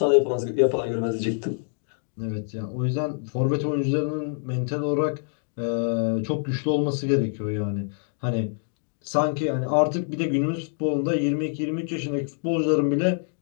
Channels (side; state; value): right; silent; 61 dB below the other